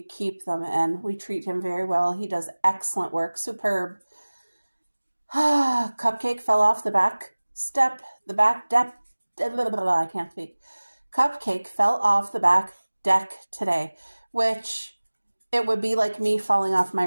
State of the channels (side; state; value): both; inverted; correlation -1.00